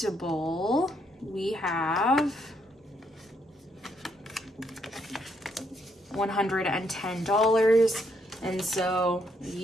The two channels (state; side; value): normal; both; correlation 0.73